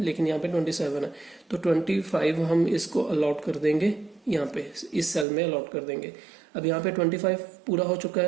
लेकिन यहाँ पे 27 है, तो 25 हम इसको अलॉट कर देंगे, यहाँ पे इस सेल में अलॉट कर देंगे। अब यहाँ पे 25 पूरा हो चुका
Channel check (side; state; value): left; drops out; at 5.2 s